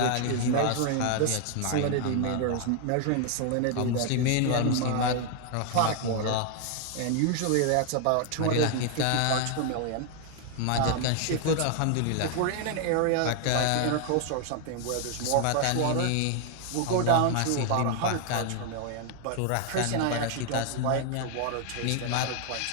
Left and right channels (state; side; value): different; both; correlation 0.00